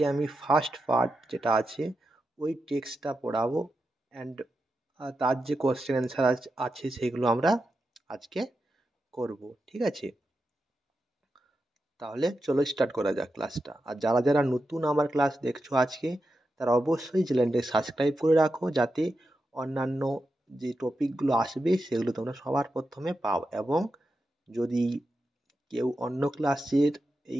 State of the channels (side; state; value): both; normal; correlation 0.88